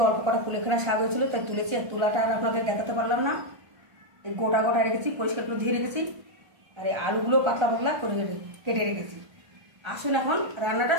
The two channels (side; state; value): left; late; 1.3 ms